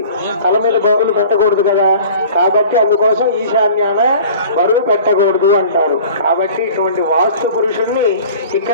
తల మీద బరువులు పెట్టకూడదు కదా. కాబట్టి అందుకోసం ఈశాన్యాన బరువు పెట్టకూడదు అంటారు. కాబట్టి ఇటువంటి వాస్తు పురుషుణ్ణి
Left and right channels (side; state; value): both; inverted; correlation -0.44